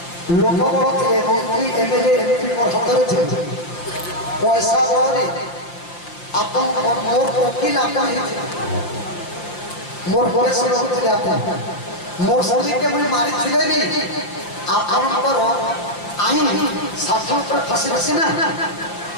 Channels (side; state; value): right; late; 5.8 ms